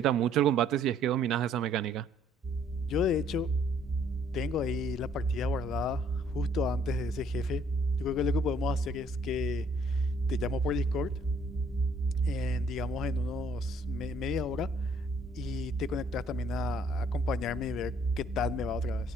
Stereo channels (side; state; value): both; normal; correlation 0.63